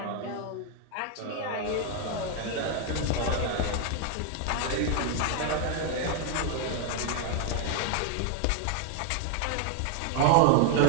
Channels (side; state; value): both; different; correlation 0.00